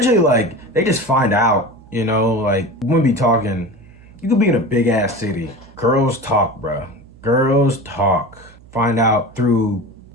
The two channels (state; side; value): noise; right; hum, 24 dB below the sound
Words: like, they just find out, you know, like, when we be talking, you could be in a big ass city. Girls talk, bro. Girls talk. Find out through